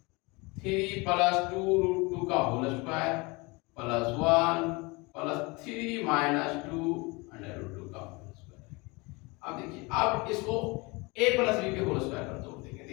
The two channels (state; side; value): quieter; right; 26.2 dB